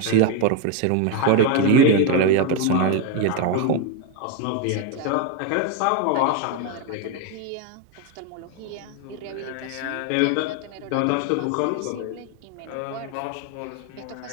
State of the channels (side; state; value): both; different; correlation 0.02